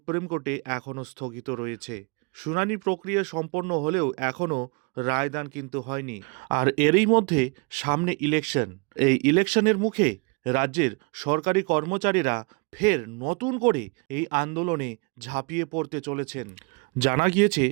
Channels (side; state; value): left; quieter; 31.4 dB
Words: কোর্টে এখনও স্থগিত রয়েছে। শুনানি প্রক্রিয়া সম্পন্ন হলেও এখনও রায়দান কিন্তু হয়নি। আর এরই মধ্যে সামনে ইলেকশন। এই ইলেকশনের মুখে রাজ্যের সরকারি কর্মচারীরা ফের নতুন করে এই আন্দোলনে ঝাঁপিয়ে পড়তে চলেছেন। জানা গিয়েছে